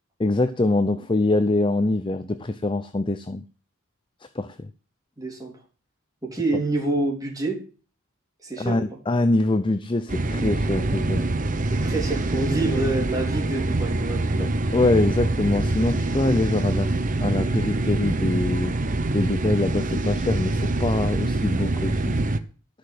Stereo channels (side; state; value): both; normal; correlation 0.75